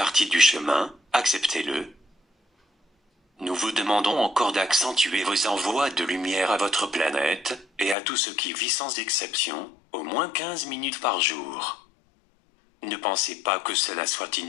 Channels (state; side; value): drops out; right; at 8.0 s